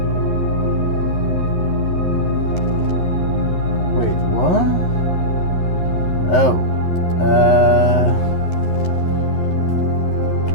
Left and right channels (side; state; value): right; late; 11 ms